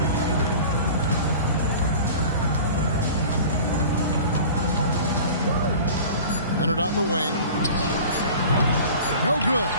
Leonard on the wing. No good.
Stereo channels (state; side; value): inverted; both; correlation -0.40